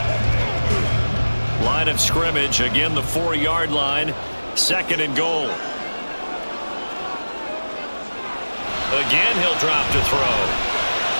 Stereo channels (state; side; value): inverted; both; correlation -1.00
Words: Line of scrimmage, again the 4-yard line, 2nd and goal. Again, he'll drop to throw.